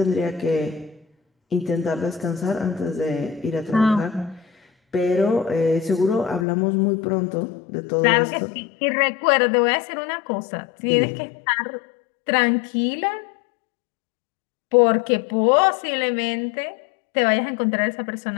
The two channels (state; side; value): drops out; right; at 6.5 s